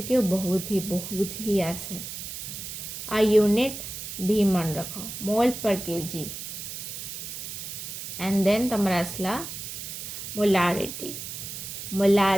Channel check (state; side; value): noise; right; hiss, 8 dB below the sound